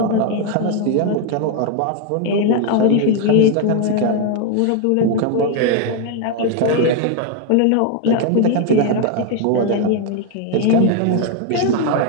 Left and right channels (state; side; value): different; both; correlation 0.01